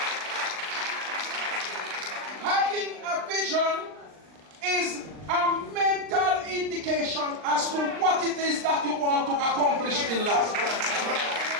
Having a vision is a mental indication as to what it is that you want to accomplish in life.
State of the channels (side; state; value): left; late; 39 ms